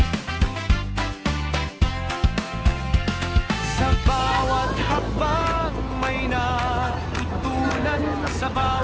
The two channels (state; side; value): identical; both; correlation 1.00